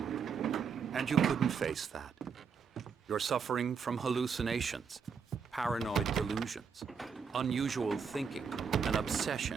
and you couldn't face that. You're suffering from hallucinations, paranoid delusions, unusual thinking, an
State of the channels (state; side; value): quieter; left; 6.2 dB